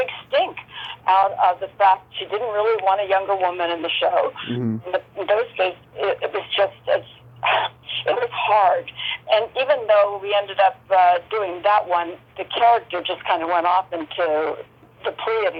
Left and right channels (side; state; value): both; identical; correlation 1.00